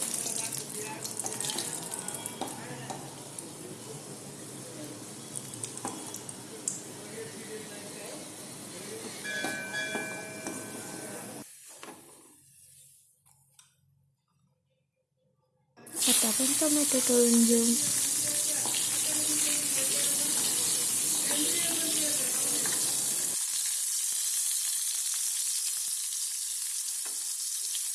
आता आपण टोमॅटो तळून घेऊ।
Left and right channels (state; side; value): identical; both; correlation 1.00